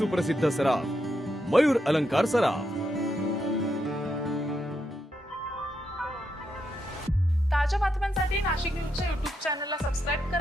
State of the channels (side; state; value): both; normal; correlation 0.81